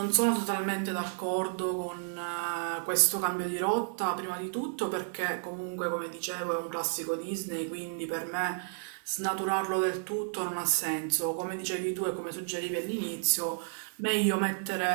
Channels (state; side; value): silent; left; digital silence